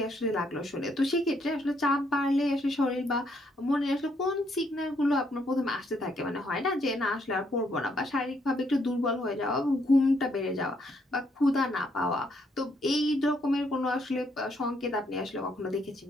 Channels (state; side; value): normal; both; correlation 0.72